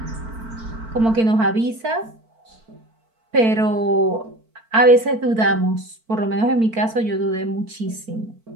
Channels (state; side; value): late; left; 4.5 ms